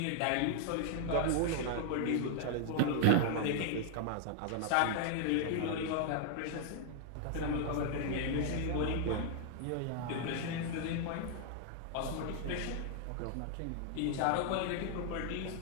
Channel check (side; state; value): both; different; correlation 0.00